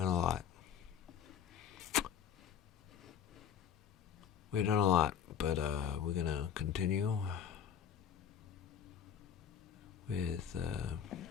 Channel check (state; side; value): quieter; right; 8.1 dB